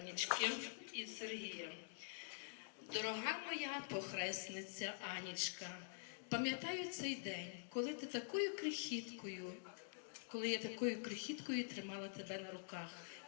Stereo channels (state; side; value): silent; right; digital silence